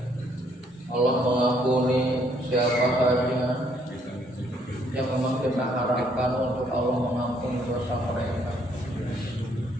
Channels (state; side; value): normal; both; correlation 0.67